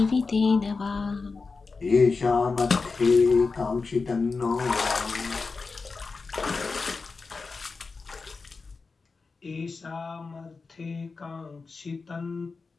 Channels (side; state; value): right; quieter; 4.3 dB